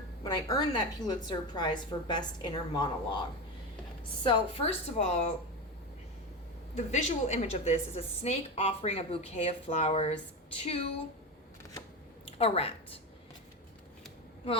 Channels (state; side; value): normal; both; correlation 0.19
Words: Prize for Best Inner Monologue. So, first of all, the visual image of this is a snake offering a bouquet of flowers to a rat.